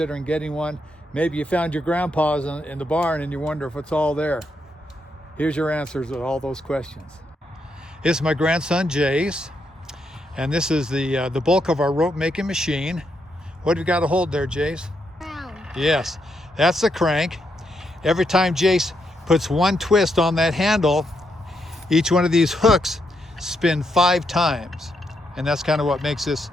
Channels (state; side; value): normal; both; correlation 0.80